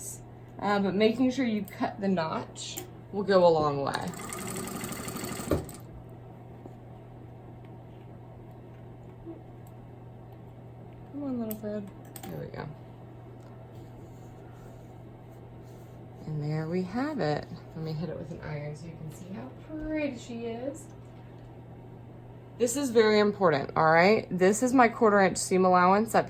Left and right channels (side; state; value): both; identical; correlation 1.00